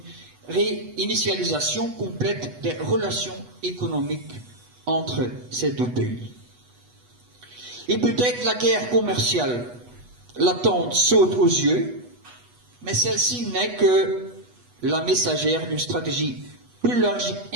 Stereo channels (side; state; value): left; late; 8.2 ms